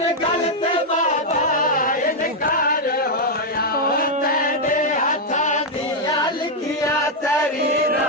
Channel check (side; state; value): both; normal; correlation -0.01